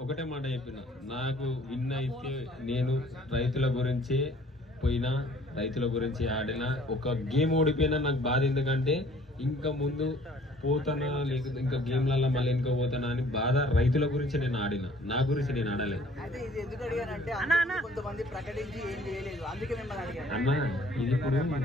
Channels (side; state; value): both; normal; correlation 0.55